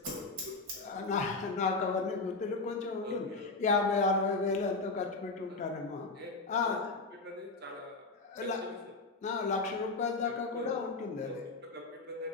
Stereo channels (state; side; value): quieter; right; 3.7 dB